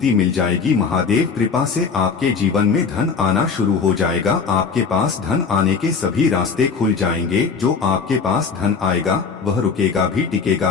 मिल जाएगी। महादेव कृपा से आपके जीवन में धन आना शुरू हो जाएगा, आपके पास धन आने के सभी रास्ते खुल जाएंगे। जो आपके पास धन आएगा वह रुकेगा भी,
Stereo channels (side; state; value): right; quieter; 5.4 dB